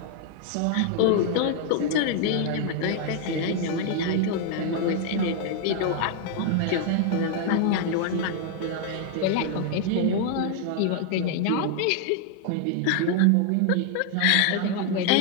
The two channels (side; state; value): both; different; correlation 0.00